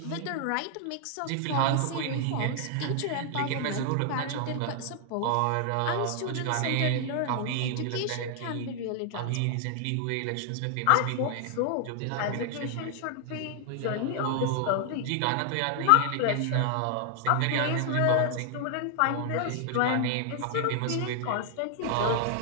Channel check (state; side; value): different; both; correlation 0.00